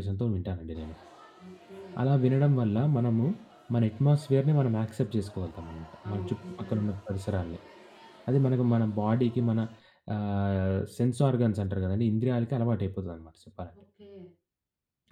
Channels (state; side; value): identical; both; correlation 1.00